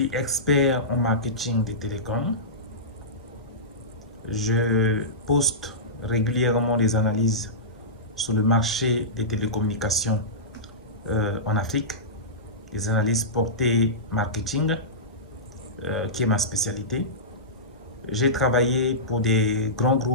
expert en marketing des télécoms. Je poste régulièrement des analyses sur le marché des télécommunications en Afrique, des analyses portées marketing, qui est ma spécialité. J'ai travaillé pour des grands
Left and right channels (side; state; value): both; normal; correlation -0.18